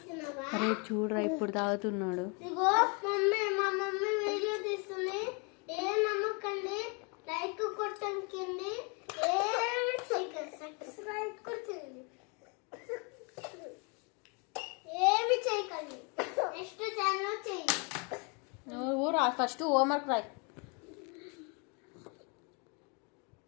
అరే చూడరా ఇప్పుడు తాగుతున్నాడు. నువ్వు రా ఫస్ట్ హోంవర్క్ రాయ్.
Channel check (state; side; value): quieter; right; 34.0 dB